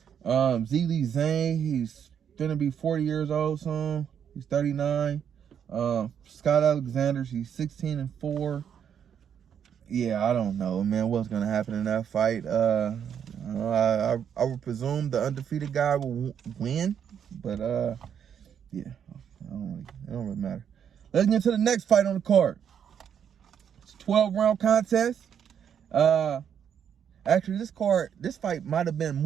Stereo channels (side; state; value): left; quieter; 8.3 dB